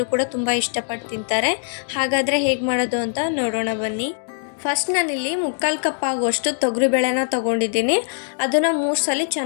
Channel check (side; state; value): right; silent; digital silence